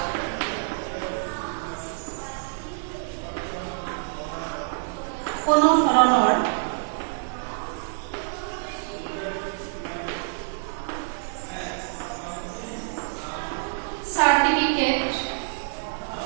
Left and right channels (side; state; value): left; silent; digital silence